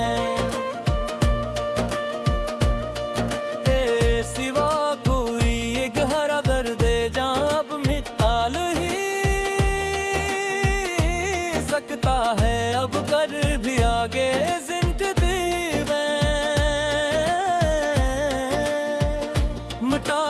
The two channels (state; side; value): identical; both; correlation 1.00